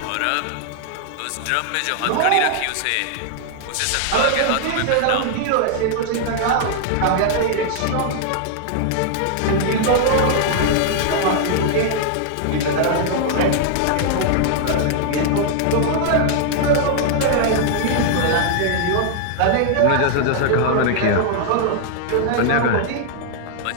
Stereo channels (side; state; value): both; different; correlation -0.01